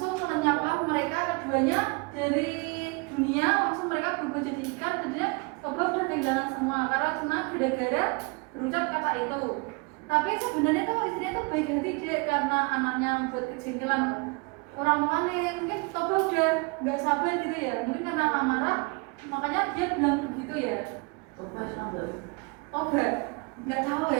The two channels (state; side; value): quieter; left; 29.9 dB